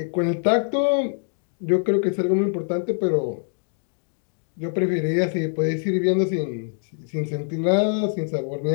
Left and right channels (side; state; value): right; silent; digital silence